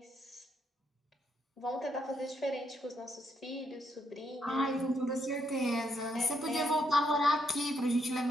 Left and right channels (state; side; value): normal; both; correlation 0.76